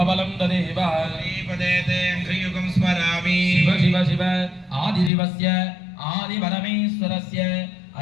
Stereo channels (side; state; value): right; drops out; at 5.1 s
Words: तदेव श्रीपदेते श्रीयुगं स्मरामि। शिव शिव शिव आदिशिवस्य आदिपरमेश्वरस्य